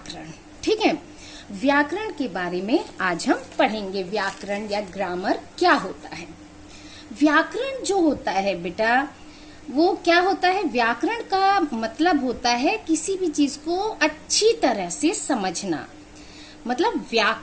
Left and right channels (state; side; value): identical; both; correlation 1.00